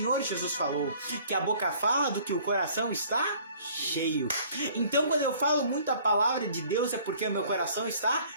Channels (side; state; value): both; inverted; correlation -0.54